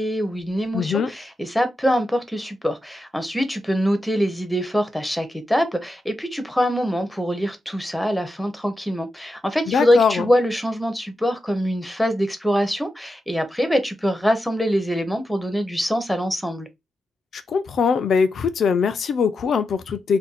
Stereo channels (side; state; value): both; normal; correlation 0.88